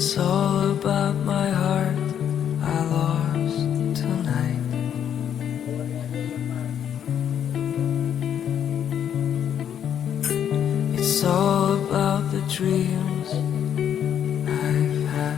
all about my heart I lost tonight. It's all about the dreams I've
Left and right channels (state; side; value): quieter; right; 9.2 dB